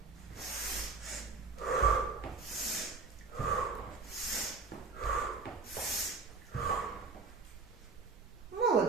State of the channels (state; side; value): quieter; left; 4.2 dB